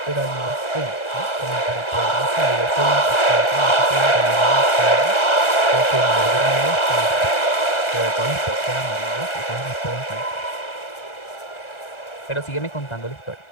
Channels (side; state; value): right; late; 1.3 ms